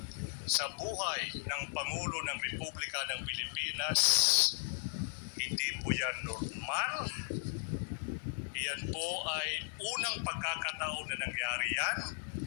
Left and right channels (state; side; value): silent; right; 54 dB below the other